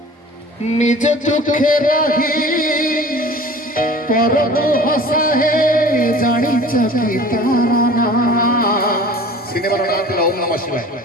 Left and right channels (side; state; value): both; normal; correlation 0.44